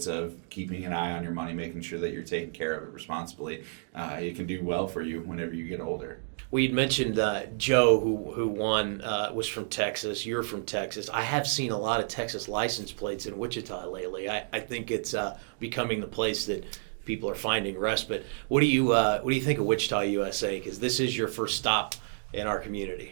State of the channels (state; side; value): silent; left; digital silence